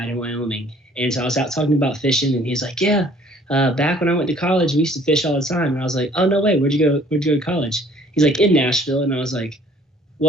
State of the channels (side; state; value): both; normal; correlation 0.56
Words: in Wyoming, and so I was out talking about fishing, and he's like, yeah. Back when I went to college, we used to fish all the time. And I was like, oh, no way. Where'd you go to college? He's like, in Nashville. And I was like,